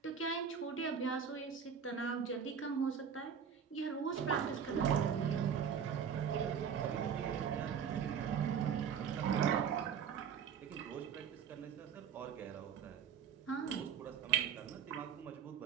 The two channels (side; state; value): left; quieter; 7.4 dB